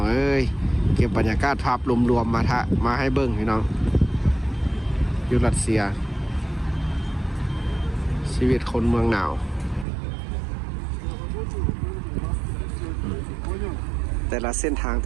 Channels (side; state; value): left; drops out; at 9.9 s